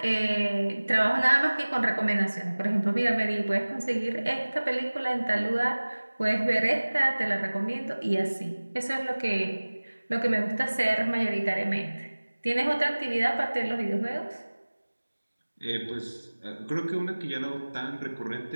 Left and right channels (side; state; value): both; inverted; correlation -1.00